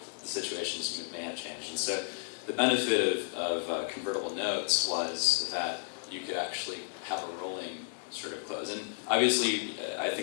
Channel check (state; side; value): silent; right; digital silence